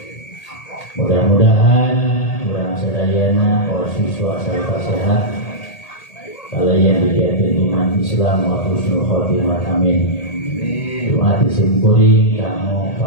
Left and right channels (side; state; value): right; late; 1.8 ms